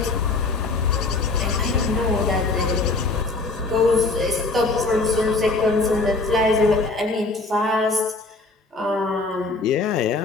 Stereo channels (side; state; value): right; quieter; 3.5 dB